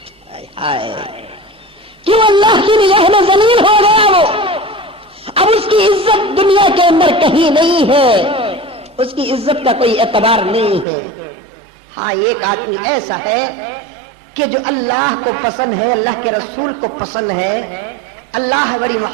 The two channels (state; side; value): drops out; left; at 10.9 s